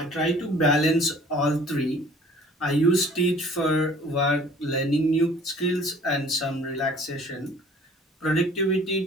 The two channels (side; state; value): both; normal; correlation 0.51